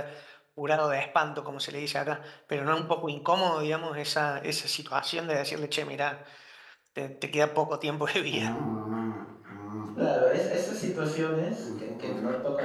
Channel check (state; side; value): identical; both; correlation 1.00